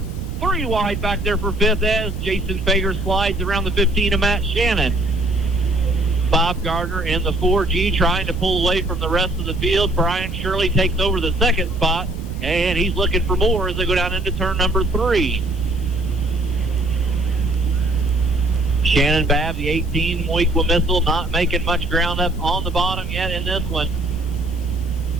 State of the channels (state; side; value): noise; right; rumble, 7 dB below the sound